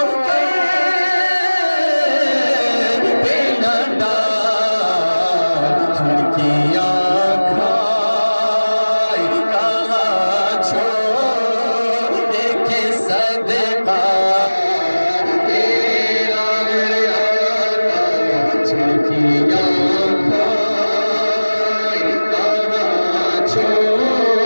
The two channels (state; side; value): inverted; both; correlation -1.00